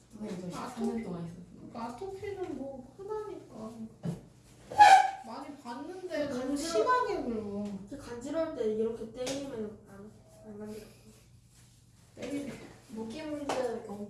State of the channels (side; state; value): both; identical; correlation 1.00